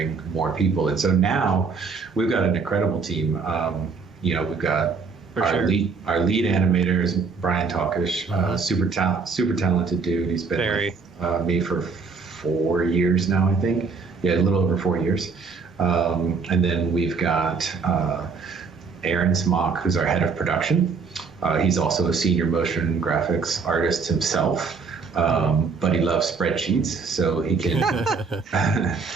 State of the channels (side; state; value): left; quieter; 4.9 dB